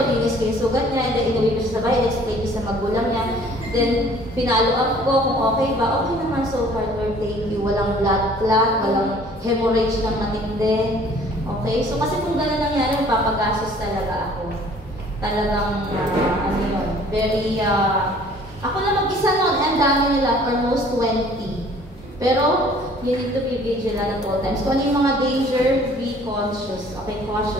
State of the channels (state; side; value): normal; both; correlation 0.54